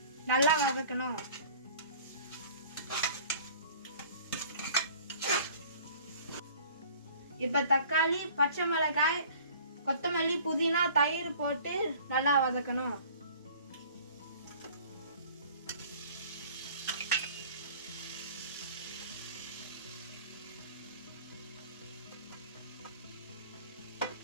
நல்லா வதக்கணும். இப்ப தக்காளி, பச்சை மிளகாய், கொத்தமல்லி, புதினா, தயிர் போட்டு நல்லா வதக்கணும்.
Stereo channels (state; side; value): inverted; both; correlation -0.48